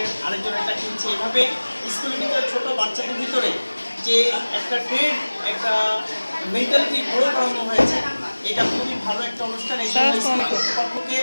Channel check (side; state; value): both; inverted; correlation -1.00